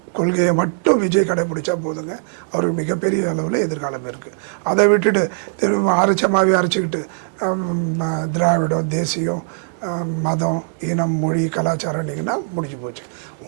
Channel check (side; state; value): left; silent; digital silence